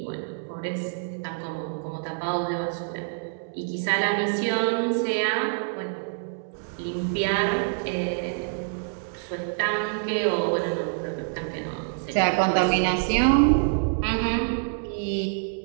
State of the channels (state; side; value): silent; left; digital silence